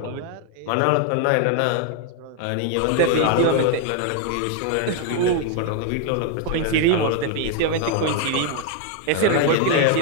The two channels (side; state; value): both; different; correlation 0.00